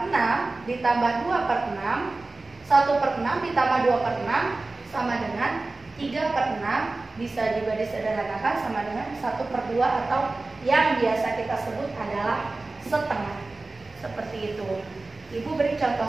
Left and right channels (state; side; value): quieter; left; 3.3 dB